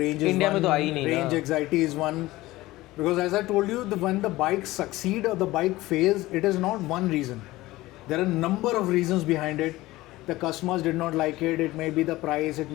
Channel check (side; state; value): right; quieter; 18.3 dB